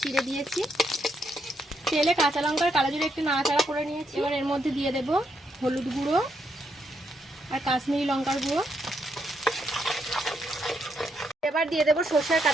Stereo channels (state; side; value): normal; both; correlation 0.78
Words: চিড়ে দিয়েছি। তেলে কাঁচা লঙ্কার কালো জিরে একটু নাড়াচাড়া করে নিয়েছি। এবার এর মধ্যে দিয়ে দেব হলুদ গুঁড়ো আর কাশ্মীরি লঙ্কার গুঁড়ো। এবার দিয়ে দেব সর্ষে আর